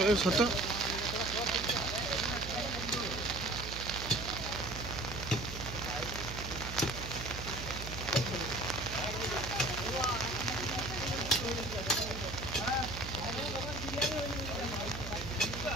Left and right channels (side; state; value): right; noise; hum, 8 dB below the sound